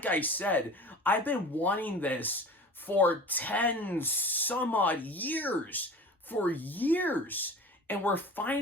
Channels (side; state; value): both; normal; correlation 0.38